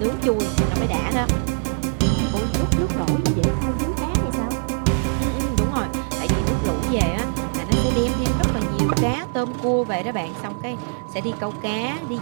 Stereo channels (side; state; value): left; silent; 64 dB below the other